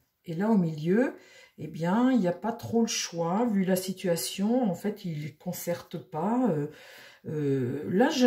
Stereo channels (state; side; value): identical; both; correlation 1.00